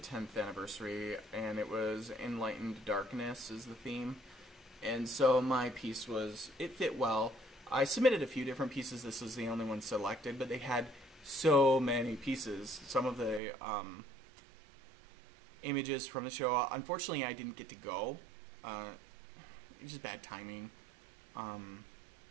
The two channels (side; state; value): left; drops out; at 13.4 s